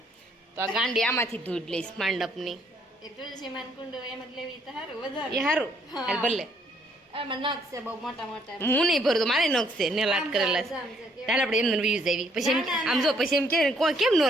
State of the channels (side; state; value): both; normal; correlation 0.68